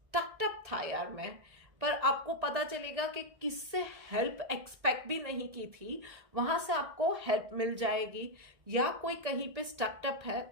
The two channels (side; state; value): left; late; 1.6 ms